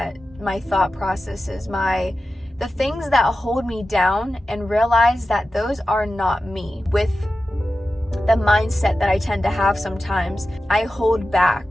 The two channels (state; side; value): normal; both; correlation 0.93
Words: my thought processes, the things that hold me down, and realize that those are not me. With the mindset that I tend to have sometimes, I hold